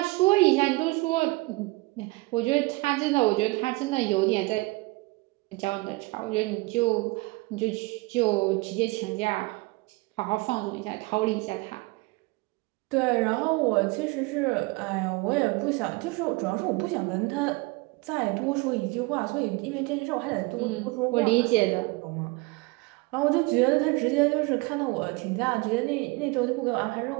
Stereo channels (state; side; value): quieter; left; 24.4 dB